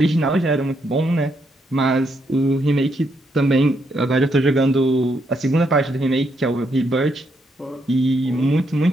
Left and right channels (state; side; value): normal; both; correlation 0.77